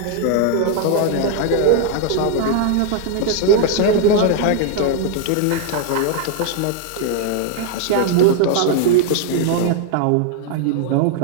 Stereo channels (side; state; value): both; different; correlation 0.00